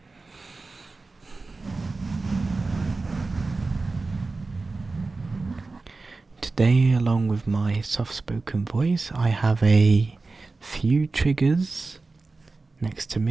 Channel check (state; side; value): quieter; left; 3.7 dB